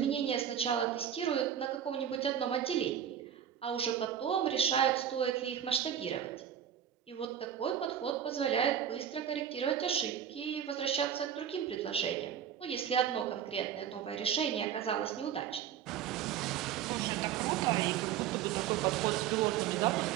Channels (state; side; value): quieter; left; 9.4 dB